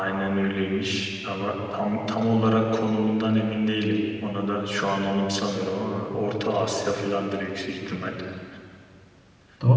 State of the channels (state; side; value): identical; both; correlation 1.00